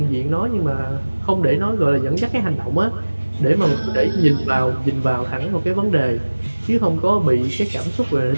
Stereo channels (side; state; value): both; inverted; correlation -1.00